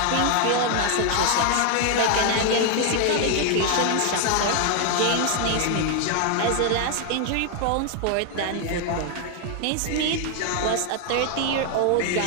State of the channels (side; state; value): both; different; correlation 0.00